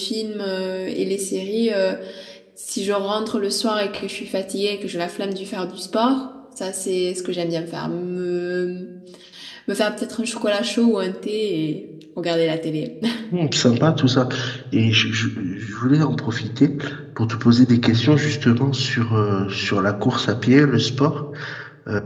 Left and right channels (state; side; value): identical; both; correlation 1.00